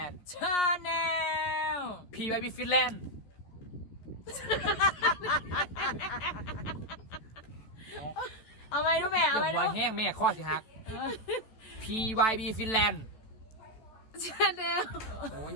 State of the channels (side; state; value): right; late; 14 ms